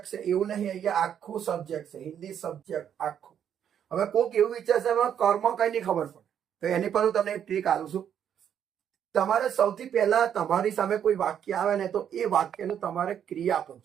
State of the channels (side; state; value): left; quieter; 9.0 dB